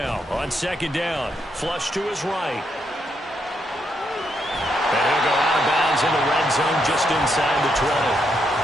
on second down. Flush to his right. And he'll go out of bounds in the red zone just inside the 20.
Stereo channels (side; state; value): both; normal; correlation 0.78